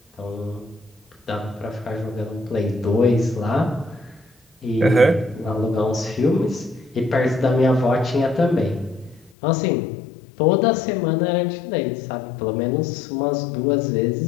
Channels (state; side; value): drops out; right; at 9.3 s